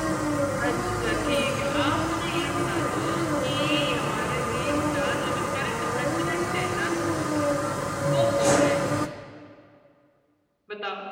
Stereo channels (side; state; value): both; identical; correlation 1.00